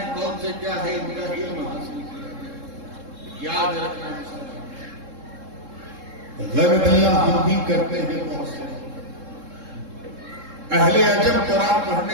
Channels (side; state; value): left; late; 3.7 ms